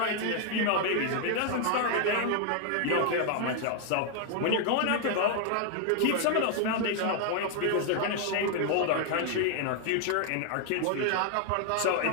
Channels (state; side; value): different; both; correlation 0.00